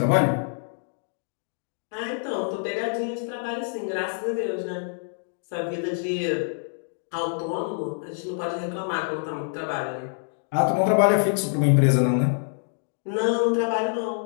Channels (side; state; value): right; silent; digital silence